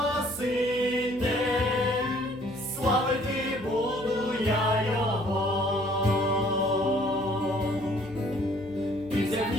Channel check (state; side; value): noise; left; hum, 20 dB below the sound